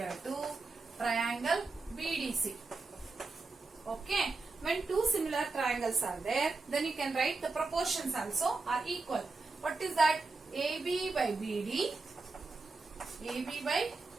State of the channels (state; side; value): quieter; left; 3.8 dB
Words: to triangle BDC. Okay. When two similar triangles are there, then you can write the proportions also are equal. What is that? AB by BD